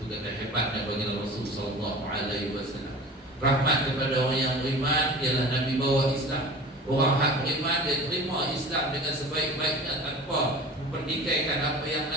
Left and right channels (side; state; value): both; normal; correlation 0.39